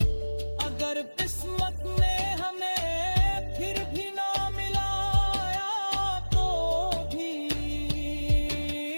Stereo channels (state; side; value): inverted; both; correlation -1.00